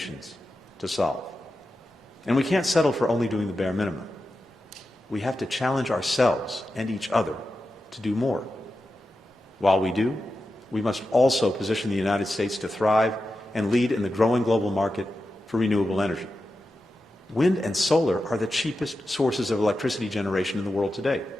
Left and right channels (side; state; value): both; normal; correlation 0.91